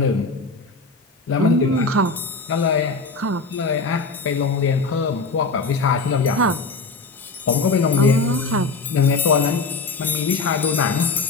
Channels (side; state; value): right; quieter; 3.9 dB